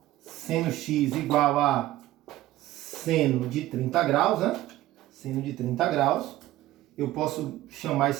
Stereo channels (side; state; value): left; quieter; 15.4 dB